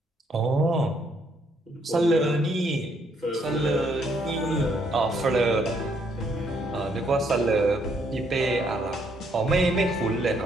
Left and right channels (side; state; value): both; normal; correlation 0.70